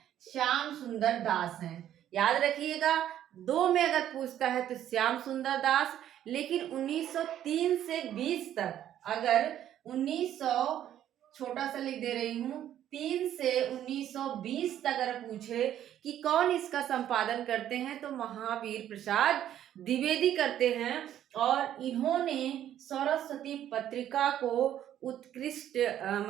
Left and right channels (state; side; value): quieter; left; 11.2 dB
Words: श्याम सुंदर दास हैं। याद रखिएगा, 2 में अगर पूछता है तो श्याम सुंदर दास। लेकिन 1903 से 20 तक, अगर 1900, छोटा सा लिख दे रही हूँ, 3 से 1920 तक अगर पूछे कि कौन इसका संपादन करते हैं, तो महावीर प्रसाद द्विवेदी करते हैं। और इन्होंने सरस्वती पत्रिका को उत्कृष्ट